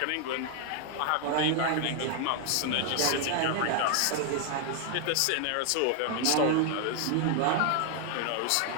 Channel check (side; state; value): both; different; correlation 0.00